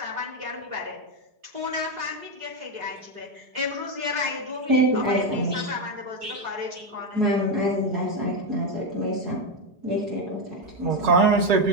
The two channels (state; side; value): late; left; 4.8 ms